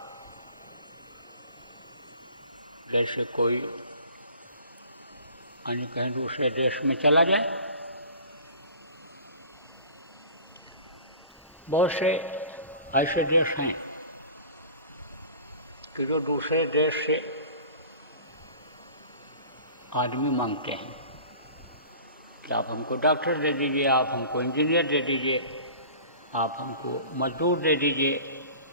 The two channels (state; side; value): inverted; both; correlation -0.42